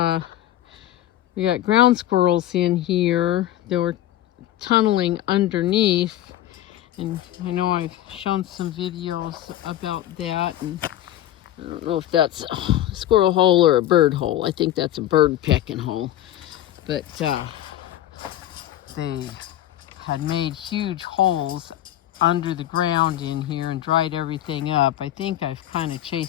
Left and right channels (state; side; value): quieter; right; 12.9 dB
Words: we got ground squirrels in here. They were tunneling underneath, and I know I've shown some videos about that, and I don't know if that's a squirrel hole or a bird hole. I think that's a bird pecking hole. But they had made huge holes under the ground in here and dried everything up. I think I've kind of